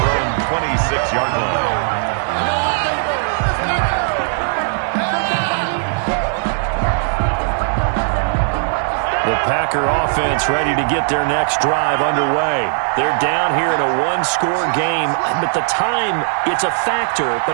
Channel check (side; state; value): left; silent; digital silence